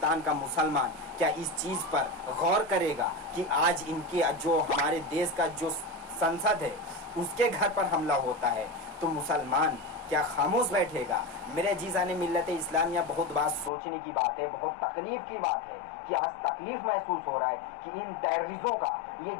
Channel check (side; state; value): right; drops out; at 13.7 s